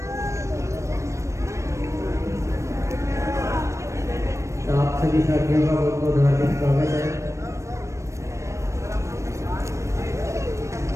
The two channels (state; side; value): late; left; 0.15 ms